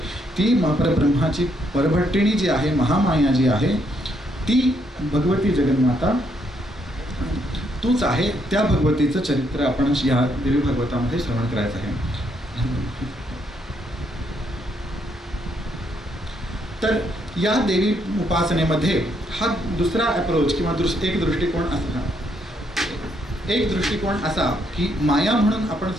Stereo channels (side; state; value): both; normal; correlation 0.74